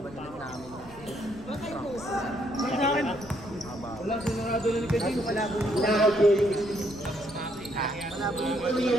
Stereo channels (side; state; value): left; noise; rumble, 19 dB below the sound